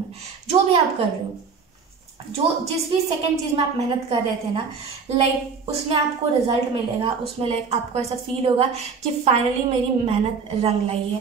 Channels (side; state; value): left; quieter; 5.5 dB